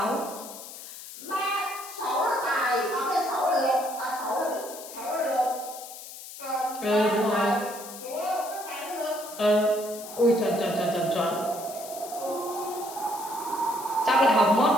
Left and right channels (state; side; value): noise; left; hiss, 13 dB below the sound